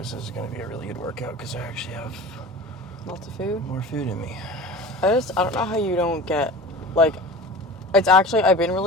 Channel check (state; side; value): normal; both; correlation 0.36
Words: is going to be a really good workout because I actually have Lots of food? more food in me. I don't know how you don't get, like, it's actually, I've been